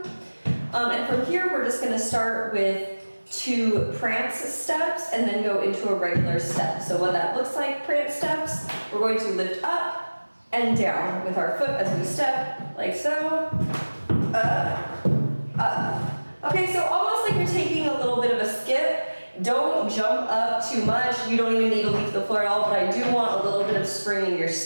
And from here, we're just gonna start with 2 prance steps and then go into a regular step. So what that looks like, prance steps, we're going to lift up and down with our foot as we step, like so, up, up. Okay, so almost like you're taking a little bit of a skip. Don't jump up too much. You don't even need to leave the floor at all, but I do want a little bit of spring in your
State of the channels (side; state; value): both; inverted; correlation -1.00